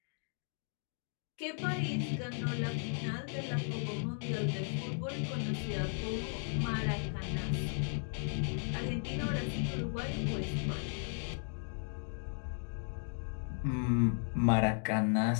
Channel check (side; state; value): right; silent; 54 dB below the other